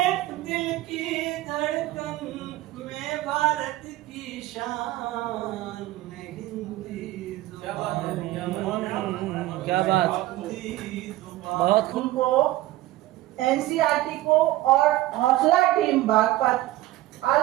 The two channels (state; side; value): quieter; left; 16.5 dB